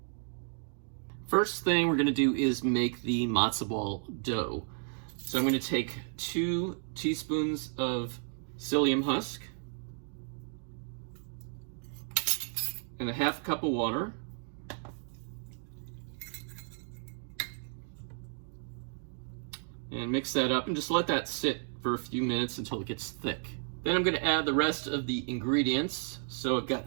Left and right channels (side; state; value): left; silent; 56 dB below the other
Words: First thing we're going to do is make the matzo ball dough. So I'm going to take 2 teaspoons of psyllium husk and a half cup of water. And mix that up and just let that sit for a few minutes until it gets thick. Then I'm going to add the rest of the ingredients. So I've got